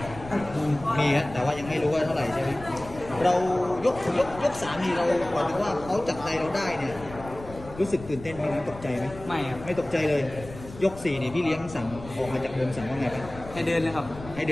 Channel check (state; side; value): noise; left; rumble, 15 dB below the sound